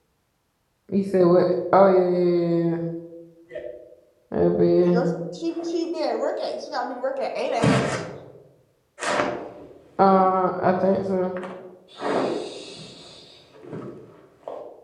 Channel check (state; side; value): identical; both; correlation 1.00